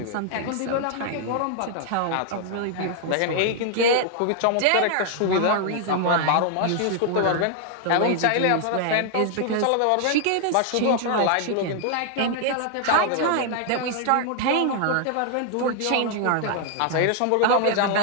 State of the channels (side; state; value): both; different; correlation 0.00